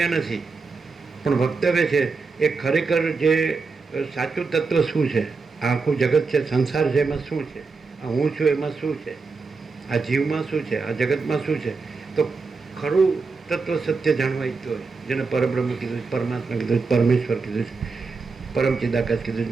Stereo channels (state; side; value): quieter; left; 4.4 dB